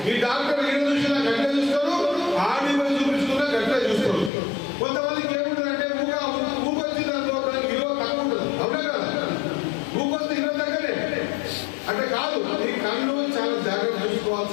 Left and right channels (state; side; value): drops out; right; at 4.3 s